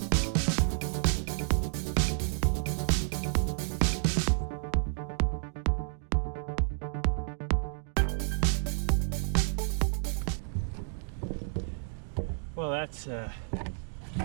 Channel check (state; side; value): silent; left; digital silence